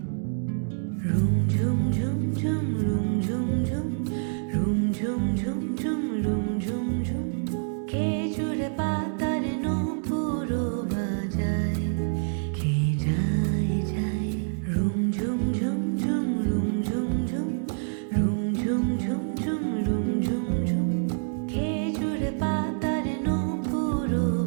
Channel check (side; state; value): left; silent; digital silence